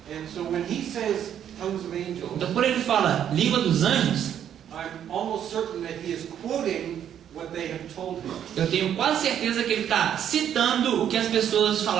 And so when he says tongues of angels, Então, quando ele fala língua dos anjos, I'm almost certain that he is quoting what they have told him. eu tenho quase certeza que ele está citando o que as pessoas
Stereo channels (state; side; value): quieter; left; 9.7 dB